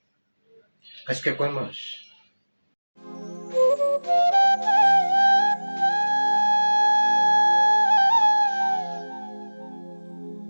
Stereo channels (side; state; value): both; inverted; correlation -1.00